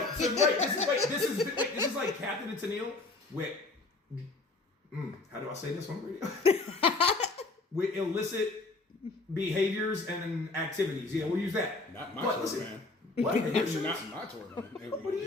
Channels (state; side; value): quieter; right; 3.4 dB